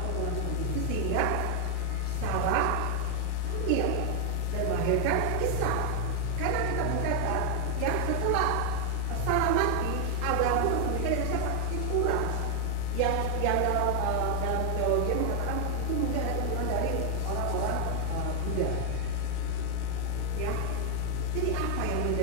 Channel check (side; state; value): both; different; correlation 0.00